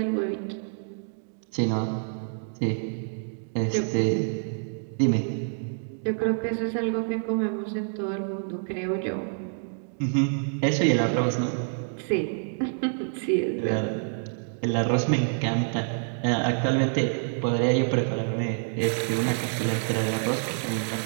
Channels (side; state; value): left; silent; digital silence